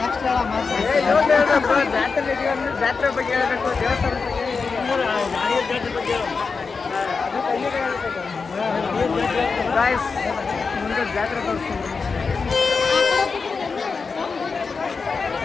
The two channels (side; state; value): right; quieter; 4.8 dB